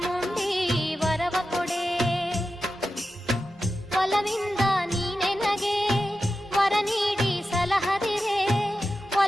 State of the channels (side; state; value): both; normal; correlation 0.92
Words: ವರವ ಕೊಡೆ. ಒಲವಿಂದ ನೀನೆ ನಗೆ ವರ ನೀಡಿ ಸಲಹದಿರೆ,